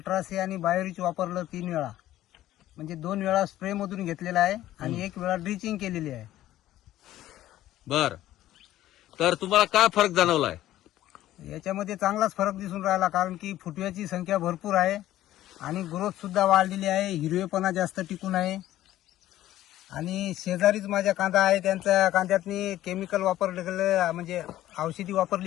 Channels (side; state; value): right; quieter; 14.0 dB